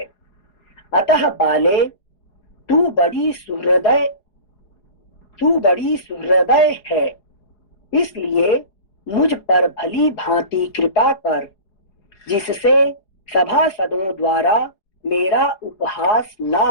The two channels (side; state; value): right; late; 4.8 ms